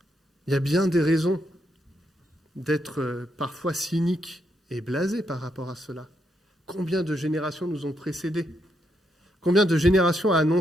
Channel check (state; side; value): normal; both; correlation 0.79